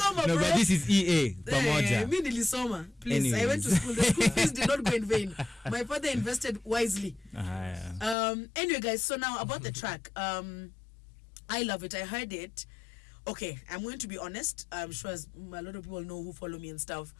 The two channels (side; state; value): right; drops out; at 8.2 s